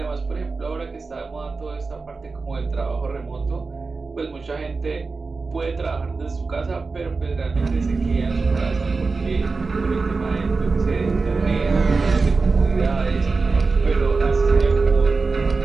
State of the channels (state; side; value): quieter; left; 4.1 dB